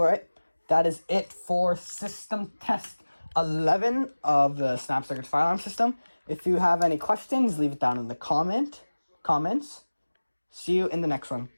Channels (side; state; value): both; inverted; correlation -1.00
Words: that is it for system test 11 of the Snapdragon fire alarm system. If you have any questions, leave it down in the comments. See you in the next one.